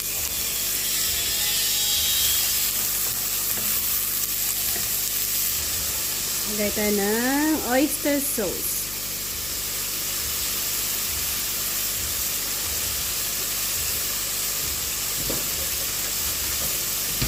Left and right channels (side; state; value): left; noise; hum, 14 dB below the sound